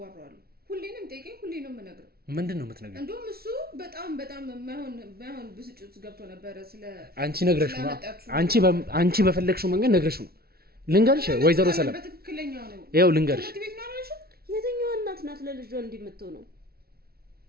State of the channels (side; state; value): left; late; 0.44 ms